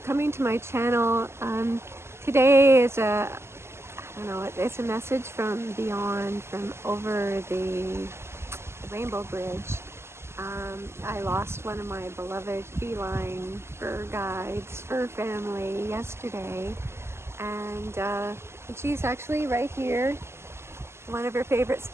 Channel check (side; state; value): left; late; 0.12 ms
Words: coming to my channel. Today is I don't know, it's a message from beyond, from over the Rainbow Bridge. I lost one of my beloved feline fur guides, fur family yesterday, and she's actually right here, one of her favorite